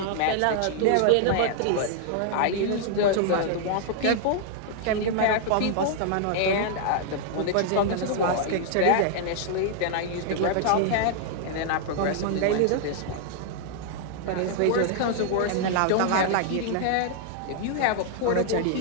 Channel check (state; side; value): different; both; correlation -0.01